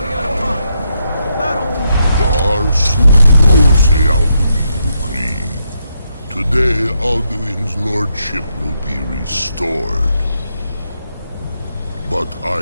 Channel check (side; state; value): both; inverted; correlation -0.80